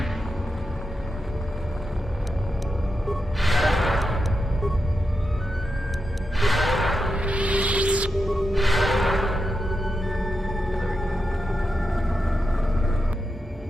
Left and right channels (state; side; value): normal; both; correlation 0.87